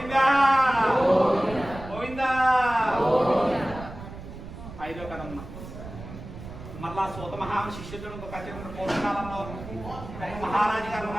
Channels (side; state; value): right; noise; rumble, 12 dB below the sound